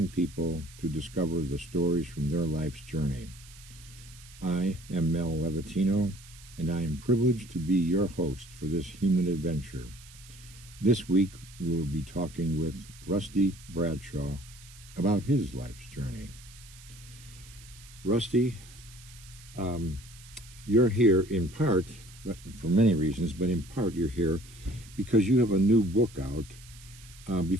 people to discover the stories from their life's journey. I am Mel Levatino, and I am privileged to be your host for this human adventure. This week, we will be talking with Rusty Bradshaw about his life's journey. Rusty, you're here in part, for many reasons, but in part you're here because you have a new book out.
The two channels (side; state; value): right; noise; hiss, 20 dB below the sound